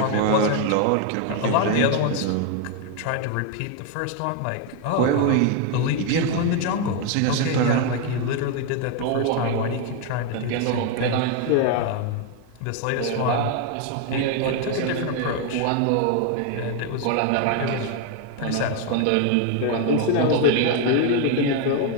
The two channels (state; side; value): different; both; correlation 0.01